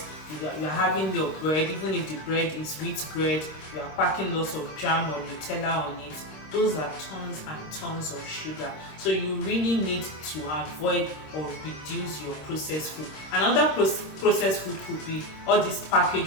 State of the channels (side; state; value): right; late; 26 ms